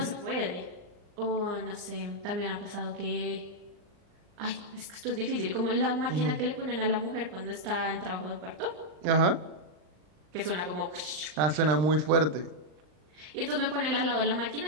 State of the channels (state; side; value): late; left; 39 ms